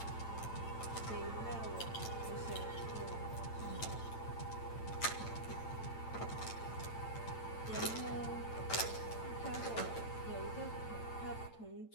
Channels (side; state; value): right; late; 8.9 ms